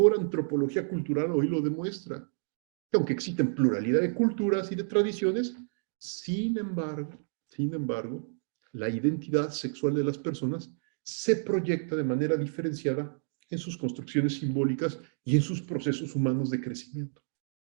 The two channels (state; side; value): silent; left; digital silence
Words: antropología cultural hoy lo demuestra. Aunque existen pluralidad de culturas y de tradiciones, sin embargo, la identidad sexual de las personas se proyecta de manera diferenciada en sus construcciones simbólicas y en sus procesos humanos de crecimiento.